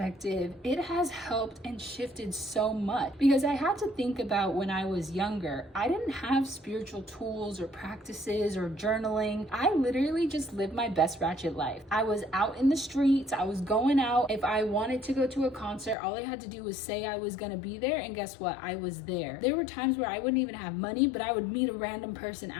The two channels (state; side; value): drops out; right; at 16.0 s